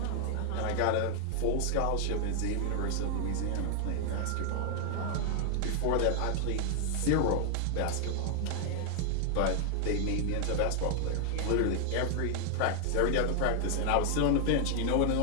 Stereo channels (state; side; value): different; both; correlation 0.00